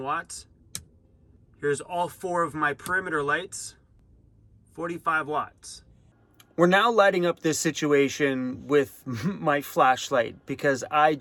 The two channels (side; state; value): both; identical; correlation 1.00